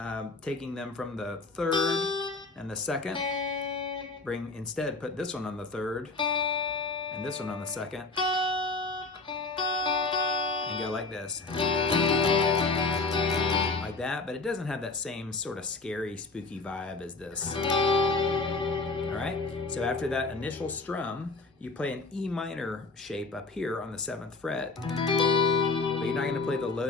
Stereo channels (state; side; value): quieter; right; 3.7 dB